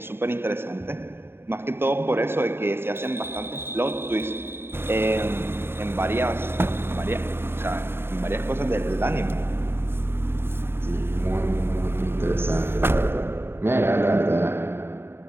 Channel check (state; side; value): late; left; 0.11 ms